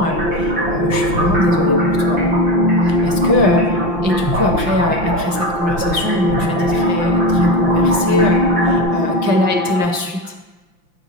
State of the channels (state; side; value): late; left; 5.8 ms